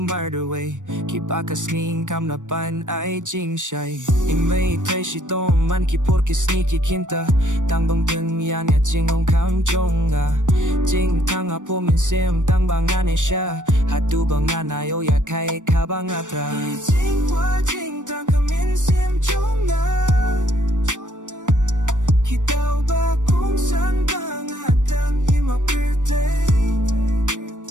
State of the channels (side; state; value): left; late; 0.87 ms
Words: murder way Ki pa ka sning kam na pan ay jing shai In mei tay shi tong man ki por ki sneaky kinta Tang bang dun yan ya jing ong kam jong a Jing tang a po min sim tang bang ane sha Hatu bang anayo ya kai ka bang atra Jing wa jing tang ka min sim jong a Kita ba kung saan bang atang imapirte